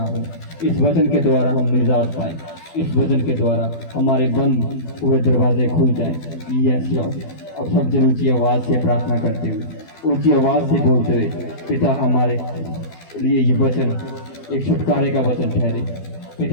हो। इस वचन के द्वारा हम निजात पाए, इस वचन के द्वारा हमारे बंद हुए दरवाजे खुल जाएं। Yes Lord. अब सब जन ऊंची आवाज़ से प्रार्थना करते हुए, ऊंची आवाज़ से बोलते हुए, पिता हमारे लिए ये वचन एक छुटकारे का वचन ठहरे।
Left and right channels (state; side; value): late; right; 12 ms